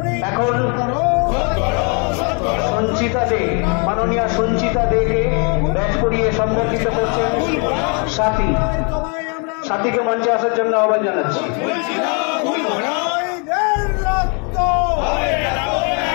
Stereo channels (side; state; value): right; quieter; 36.3 dB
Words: এখন সঞ্চিতা দে, মাননীয়া সঞ্চিতা দেকে ব্যাচ করিয়ে সম্বর্ধিত করছেন সাথী। সাথীকে মঞ্চে আসার জন্য আহ্বান জানাচ্ছি।